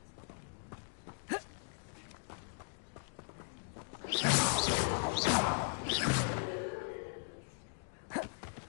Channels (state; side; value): silent; right; digital silence